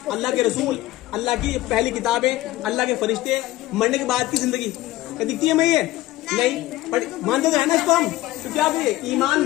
अल्लाह के रसूल अल्लाह की पहली किताबें अल्लाह के फरिश्ते मरने के बाद की जिंदगी क्या दिखती है मैं ये नहीं पर मानते तो है ना इसको हम तो क्या होगी ईमान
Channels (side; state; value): right; quieter; 16.9 dB